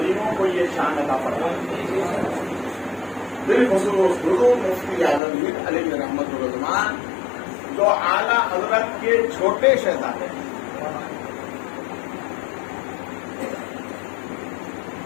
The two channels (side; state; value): right; drops out; at 5.2 s